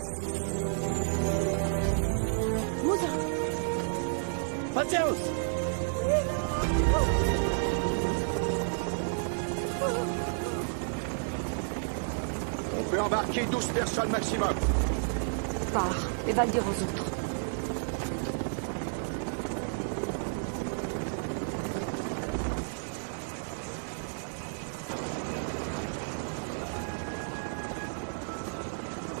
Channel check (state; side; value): silent; left; digital silence